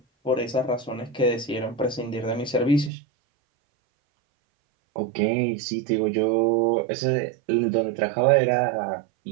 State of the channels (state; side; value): drops out; left; at 2.9 s